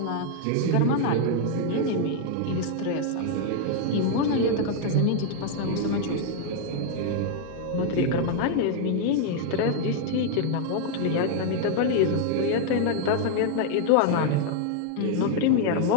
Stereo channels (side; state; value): both; different; correlation 0.00